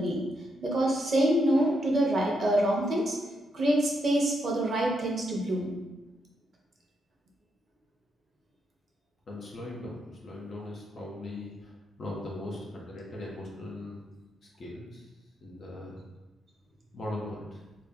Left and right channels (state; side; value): normal; both; correlation 0.80